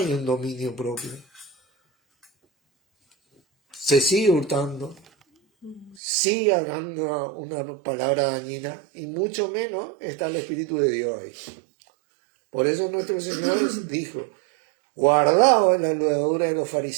un dominio propio. Se sigue hurtando, sigue hablando una palabra dañina, y mucho menos está el Espíritu de Dios ahí. Por eso nuestro Señor dijo, guardaos en la levadura de los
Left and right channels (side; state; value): left; drops out; at 6.0 s